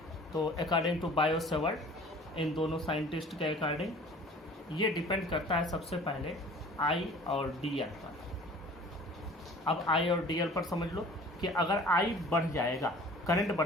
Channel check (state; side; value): normal; both; correlation 0.47